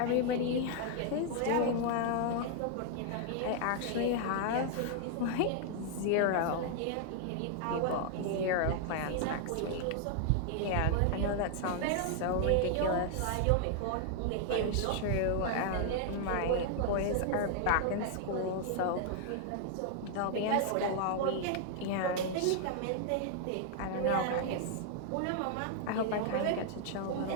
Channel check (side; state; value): both; different; correlation -0.01